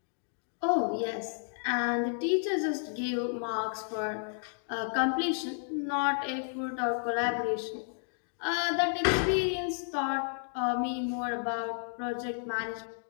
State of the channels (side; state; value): right; silent; 56 dB below the other